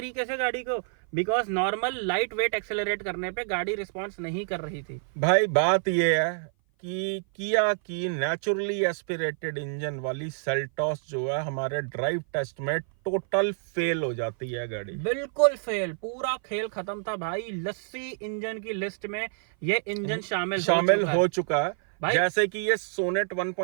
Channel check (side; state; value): left; silent; 57 dB below the other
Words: से गाड़ी को, because normal light weight accelerate करने पे गाड़ी रिस्पॉन्स नहीं कर रही थी। भाई बात ये है कि किया की नेचुरली एस्पिरेटेड इंजन वाली सेल्टॉस जो है हमारे ड्राइव टेस्ट में टोटल फेल हो जाती है गाड़ी। बिल्कुल फेल, पूरा खेल खत्म था भाई। लस्सी इंजन की लिस्ट में ये इंजन शामिल हो चुका है। भाई जैसे कि ये सोनेट